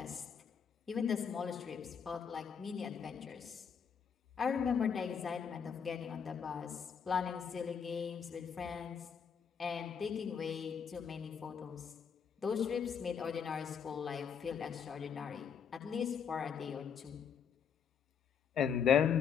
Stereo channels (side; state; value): right; quieter; 7.1 dB